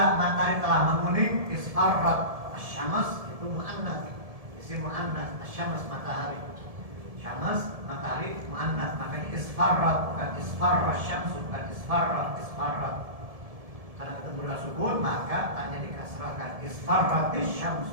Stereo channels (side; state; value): left; late; 1.7 ms